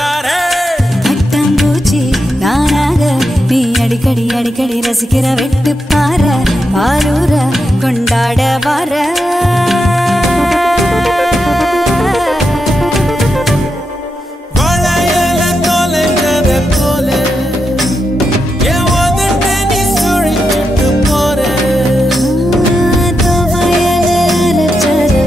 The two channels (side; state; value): both; normal; correlation 0.86